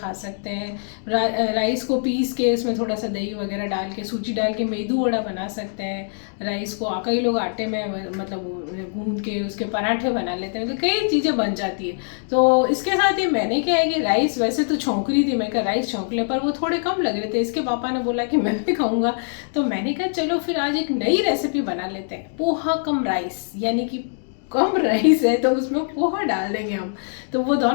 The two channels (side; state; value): right; silent; digital silence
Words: सकते हैं। राइस को पीस के उसमें थोड़ा सा दही वगैरह डाल के, सूजी डाल के मेदू वड़ा बना सकते हैं। राइस को कई लोग आटे में मतलब गूंद के उसके पराठे बना लेते हैं, तो कई चीज़ें बन जाती है। तो इसके साथ ही मैंने क्या है कि राइस वैसे तो छौंक रही थी, मैं कहा राइस छौंक ले, पर वो थोड़े कम लग रहे थे। इसके पापा ने बोला कि मैं भी खाऊंगा, तो मैंने कहा चलो फिर आज एक नई रेसिपी बना लेते हैं, पोहा कम राइस, यानी कि कम राइस है तो उसमें पोहा डाल देंगे हम, तो वो